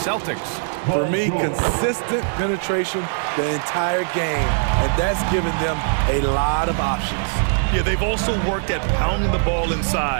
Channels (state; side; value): silent; left; 65 dB below the other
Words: For me, consistent penetration the entire game, and that's given them a lot of options. Yeah, they've also worked at pounding the ball